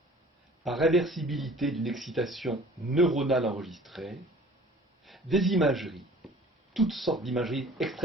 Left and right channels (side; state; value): both; normal; correlation 0.48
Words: par réversibilité d'une excitation neuronale enregistrée, des imageries, toutes sortes d'imageries